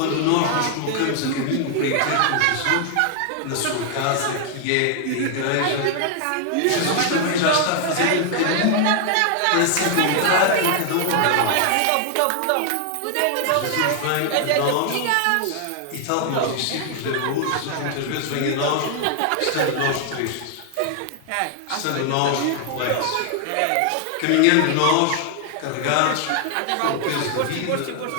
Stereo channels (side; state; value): both; different; correlation 0.00